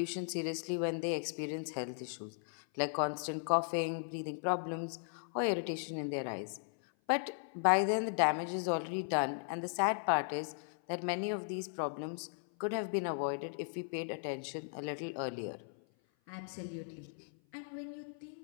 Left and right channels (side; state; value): right; silent; 53 dB below the other